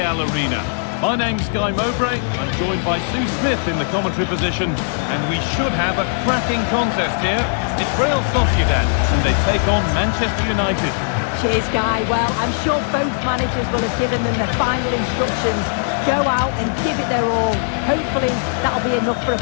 Arena. My name's Guy Mowbray. I'm joined by Sue Smith in the commentary position, and we should have a cracking contest here. It's Real Sociedad, and they take on Manchester United. Cheers, Guy. Well, I'm sure both managers will have given them their final instructions. Go out and give it their all. Hopefully, that'll be enough for a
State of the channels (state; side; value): silent; right; digital silence